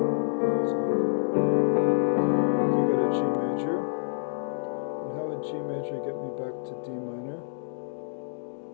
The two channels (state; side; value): silent; right; digital silence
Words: So we got a G major. And how would G major get me back to D minor?